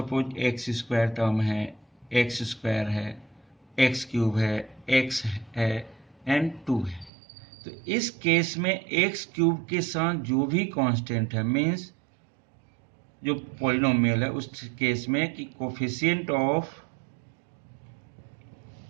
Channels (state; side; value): drops out; left; at 7.1 s